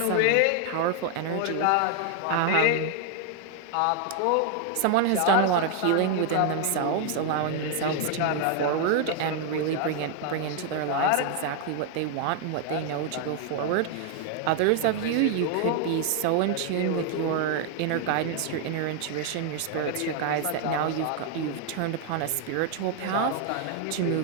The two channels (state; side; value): different; both; correlation 0.00